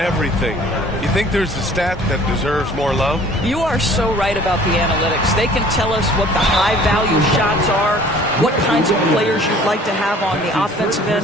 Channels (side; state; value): both; normal; correlation 0.51